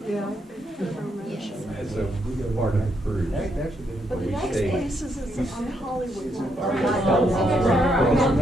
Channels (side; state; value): both; normal; correlation 0.77